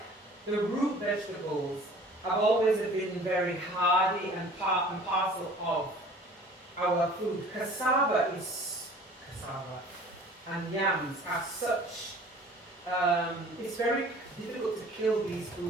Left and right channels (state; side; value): normal; both; correlation 0.48